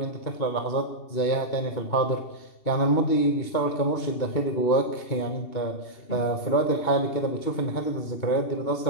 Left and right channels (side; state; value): right; late; 2.7 ms